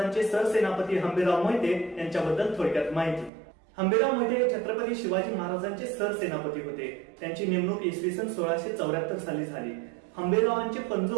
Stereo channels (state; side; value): drops out; left; at 3.3 s